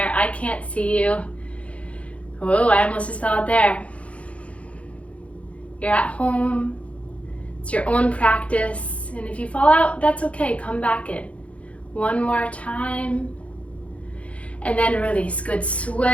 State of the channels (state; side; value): late; right; 0.063 ms